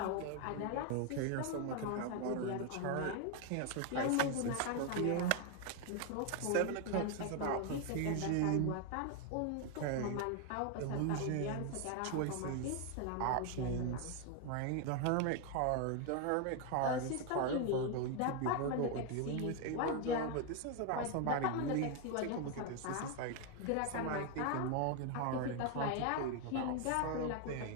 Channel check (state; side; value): different; both; correlation 0.01